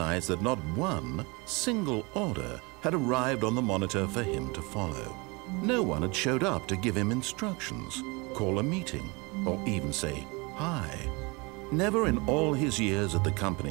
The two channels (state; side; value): quieter; left; 27.6 dB